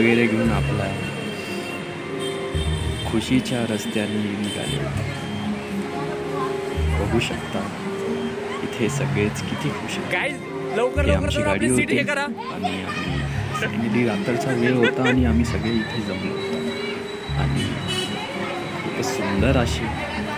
घेऊन आपला खुशीच्या रस्त्याने निघाले होते. बघू शकता इथे सगळेच किती खुश आहेत. आमची गाडी होती आणि आम्ही रात्रीचा वेळ होता आणि आम्ही सगळे इथे जमलो होतो आणि खूपच सुंदर अशी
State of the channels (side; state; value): both; identical; correlation 1.00